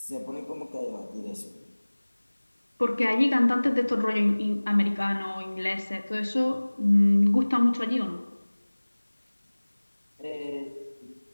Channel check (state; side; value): inverted; both; correlation -1.00